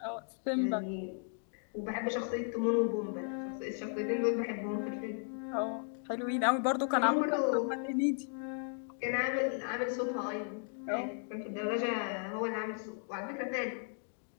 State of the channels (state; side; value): silent; right; 54 dB below the other